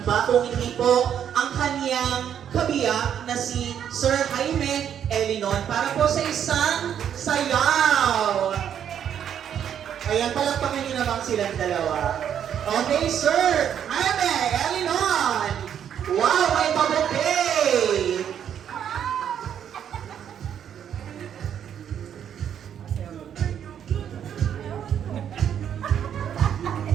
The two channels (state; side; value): quieter; left; 9.1 dB